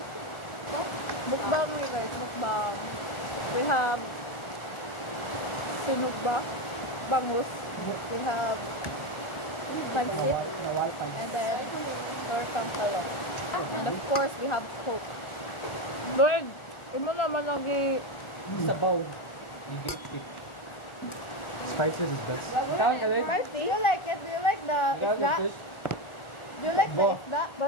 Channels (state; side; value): late; right; 1.4 ms